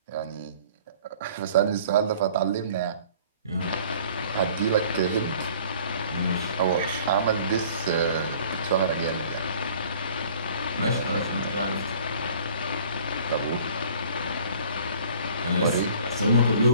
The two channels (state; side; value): inverted; both; correlation -0.51